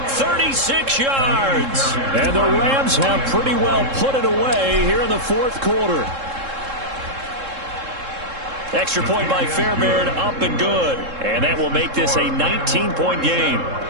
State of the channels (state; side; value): late; left; 3.7 ms